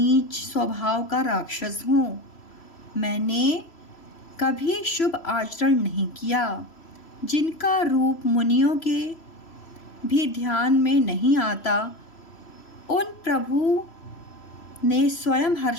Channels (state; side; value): late; right; 3.0 ms